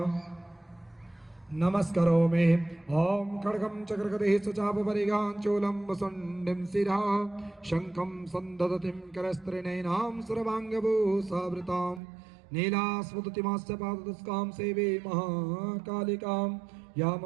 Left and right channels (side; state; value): left; drops out; at 12.0 s